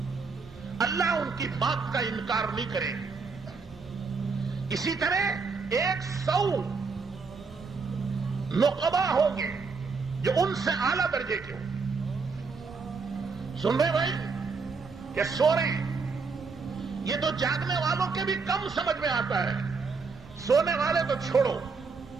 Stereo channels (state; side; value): quieter; left; 4.7 dB